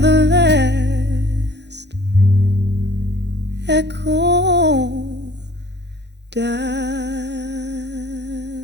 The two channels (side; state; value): left; late; 0.50 ms